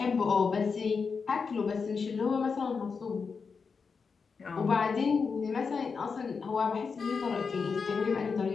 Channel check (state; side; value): quieter; right; 5.3 dB